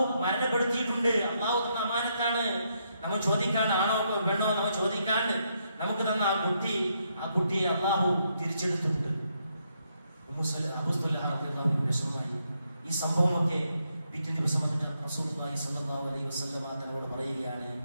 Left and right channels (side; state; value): both; inverted; correlation -0.78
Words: മരണപ്പെടുത്തിയിട്ടുണ്ട്. അള്ളാഹു തന്ന അമാനത്താണ്. നമ്മൾ ചോദിക്കാണ്ട്, ആണോ പെണ്ണോ നമ്മൾ ചോദിക്കാണ്ട് നമുക്ക് തന്ന ആ കുട്ടിയെ അള്ളാഹു തിരിച്ചെടുത്തിട്ടുണ്ട്. വിഷമമായി. ഈ സംഭവമൊക്കെ പിറ്റേ ദിവസം റസൂലുള്ളാഹി സ്വല്ലല്ലാഹു അലൈഹി വസല്ലമ തങ്ങളോട് പറയുകയാണ്.